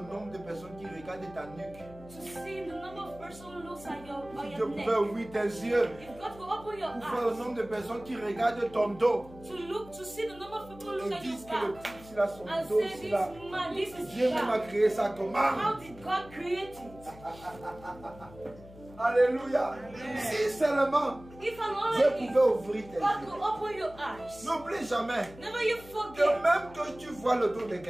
nombre de personnes qui regardent ta nuque. to see the number of persons who looks at your, Si on Dieu your neck. pouvait ouvrir tes yeux If God could open your pour voir le eyes nombre de personnes qui regardent ton dos to see the number of people who et look at disent your que le back type, s'il a son and dos, say s'il this a... man, this is Dieu même a bad. créé ça comment? How did God create it? Alléluia. Si seulement If and Dieu only pouvait if ouvrir tes God yeux. could open your eyes. N'oublie jamais Never you que forget. même que tu vois le dos de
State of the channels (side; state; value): left; noise; hum, 19 dB below the sound